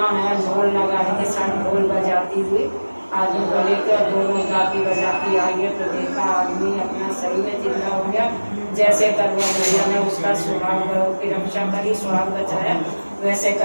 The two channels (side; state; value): both; inverted; correlation -1.00